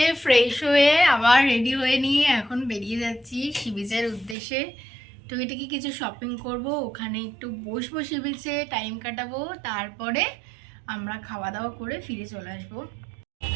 ফ্রেশ হয়ে আবার রেডি হয়ে নিয়ে এখন বেরিয়ে যাচ্ছি সি বিচের উদ্দেশ্যে। টুকিটাকি কিছু শপিং করব, ওখানে একটু বসবো সি বিচে, টাইম কাটাবো, তারপরে আমরা খাওয়া দাওয়া করে ফিরে চলে আসবো।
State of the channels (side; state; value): left; drops out; at 4.4 s